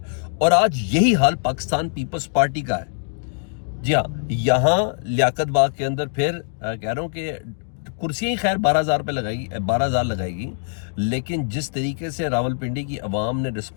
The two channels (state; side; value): silent; right; 62 dB below the other